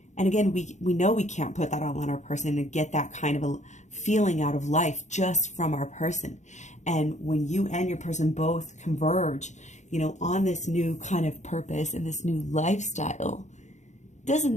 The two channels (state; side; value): late; right; 0.34 ms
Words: And again, we know we can't put that all on our person and get that kind of a feeling out of life just from our person. And when you and your person both converge, you know, on this new kind of purpose and this new lifestyle, doesn't